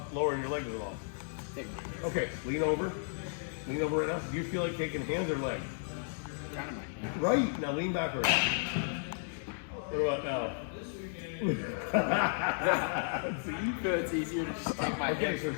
lowering your leg to the ball? Okay, lean over. Lean over right now. Do you feel like taking hands or leg? Kind of my hand. Right. Now lean backwards. What about now? See, it's easier to just take my Okay, hand. so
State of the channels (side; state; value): right; silent; digital silence